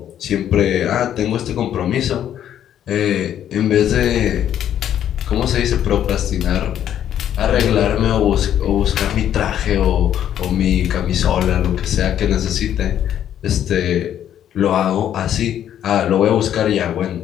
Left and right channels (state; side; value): quieter; right; 10.4 dB